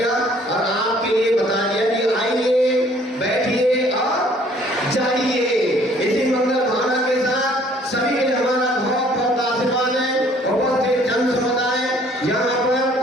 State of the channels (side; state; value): both; normal; correlation 0.58